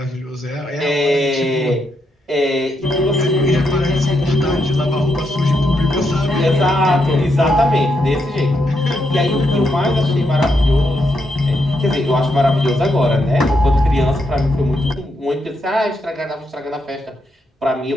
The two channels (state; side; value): normal; both; correlation 0.80